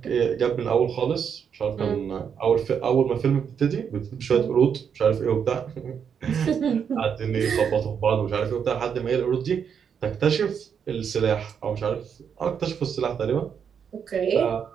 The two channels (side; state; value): left; quieter; 7.4 dB